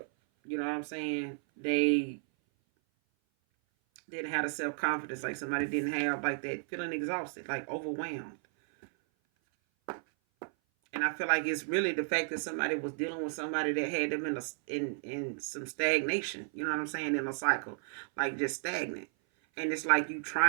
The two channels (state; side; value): silent; left; 56 dB below the other